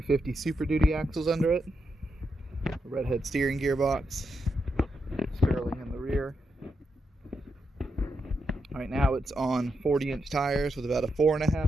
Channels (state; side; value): normal; both; correlation 0.84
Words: Super Duty axles under it. A redhead steering gearbox, Sterling in the rear. Right now it's on 40-inch tires with about a